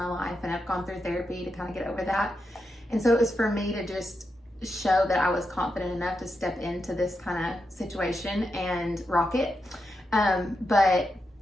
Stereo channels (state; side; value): normal; both; correlation 0.86